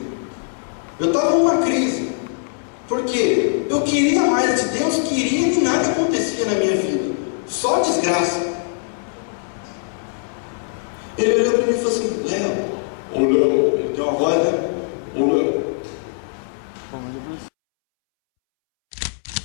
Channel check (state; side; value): silent; right; 65 dB below the other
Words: Por quê? Eu queria mais de Deus, queria e nada acontecia na minha vida. Só desgraça.